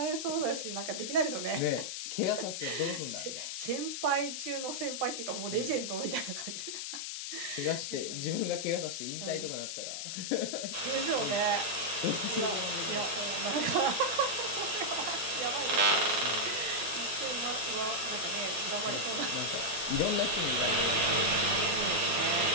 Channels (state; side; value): noise; left; hiss, 5 dB below the sound